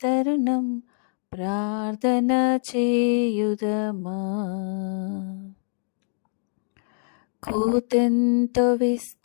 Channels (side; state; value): right; silent; digital silence